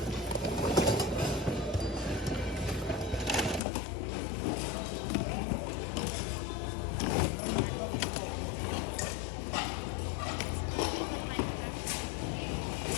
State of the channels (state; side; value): drops out; right; at 3.6 s